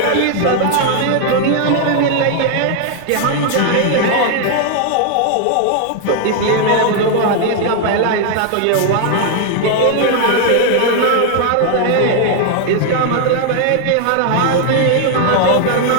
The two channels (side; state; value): both; different; correlation 0.00